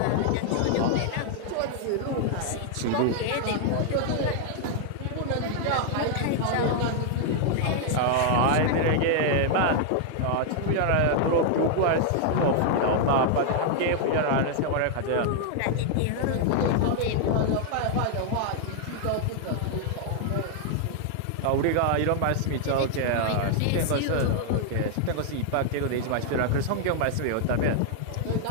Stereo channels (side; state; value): both; different; correlation 0.00